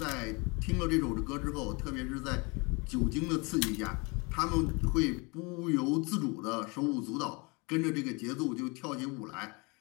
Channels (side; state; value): right; quieter; 29.0 dB